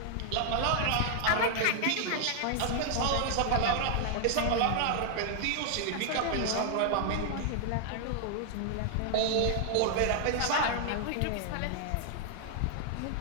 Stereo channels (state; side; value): different; both; correlation 0.00